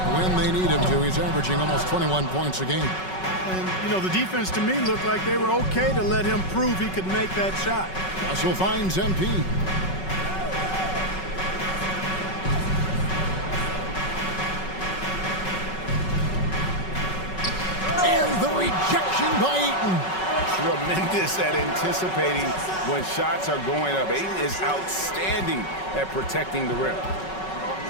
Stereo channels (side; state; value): right; late; 5.3 ms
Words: when they need him to. He's averaging almost 21 points a game. And, you know, the defense to me looked like they were okay to let him prove he could make that shot. Russell finds MP. And the rejection by Ayton. Tremendous at anticipating when shots are going up. Ayton is outstanding at protecting the rim.